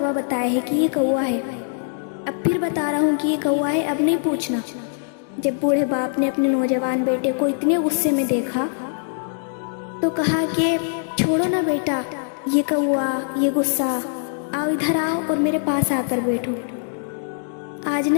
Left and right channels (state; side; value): silent; right; digital silence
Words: बताया है कि ये कौवा है। अब फिर बता रहा हूँ कि ये कौवा है, अब नहीं पूछना। जब बूढ़े बाप ने अपने नौजवान बेटे को इतने गुस्से में देखा तो कहा कि छोड़ो ना बेटा, ये कौवा, ये गुस्सा, आओ इधर आओ और मेरे पास आकर बैठो। आज